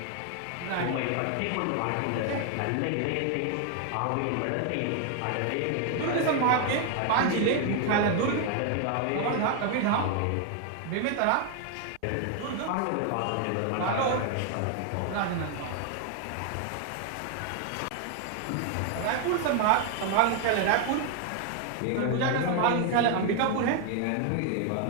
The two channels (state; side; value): different; both; correlation 0.00